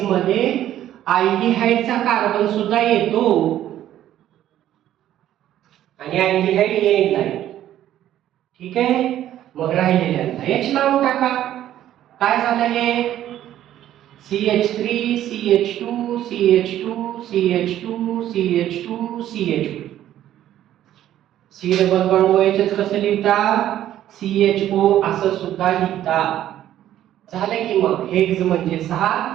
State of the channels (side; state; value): left; quieter; 12.2 dB